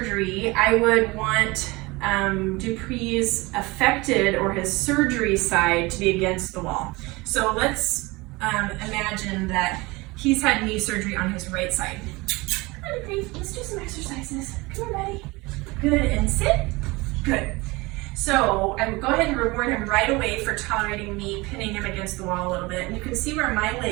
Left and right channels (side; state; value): left; quieter; 23.3 dB